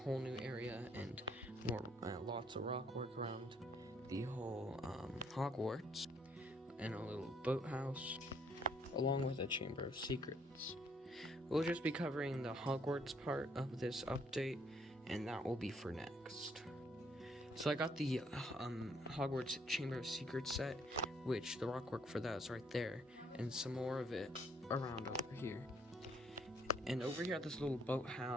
new area and more lots of rock work around the whole Hogwarts, and a little boathouse, along with a Chamber of Secrets. We'll just be covering the Hogwarts part of this update, and that will be for next. So I got the Hogwarts Chamber of Secrets set, which the rock work for that is right there, and some more of it around over here. And over here at this little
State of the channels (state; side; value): normal; both; correlation 0.67